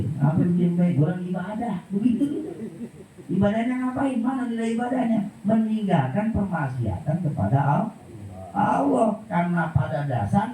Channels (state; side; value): identical; both; correlation 1.00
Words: Apa diem baik? Orang ibadah. Begitu gitu. Ibadahnya ngapain? Mana nilai ibadahnya? Meninggalkan permaksiatan kepada Allah. Karena pada